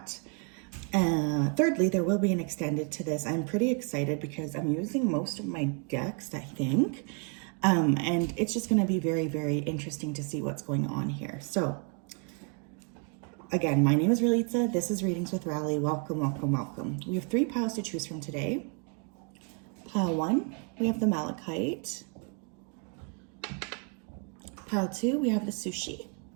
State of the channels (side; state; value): left; quieter; 38.0 dB